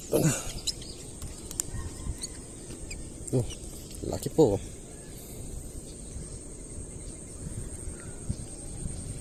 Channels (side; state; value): both; identical; correlation 1.00